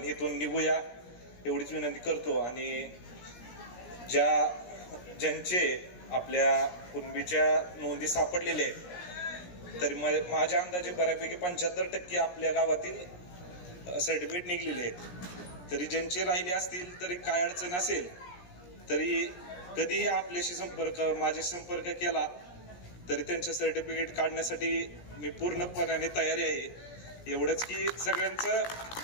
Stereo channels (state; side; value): late; right; 17 ms